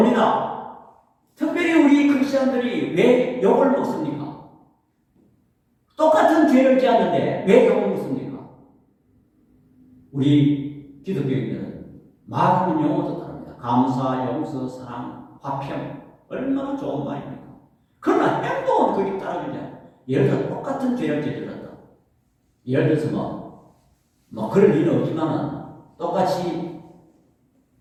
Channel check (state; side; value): identical; both; correlation 1.00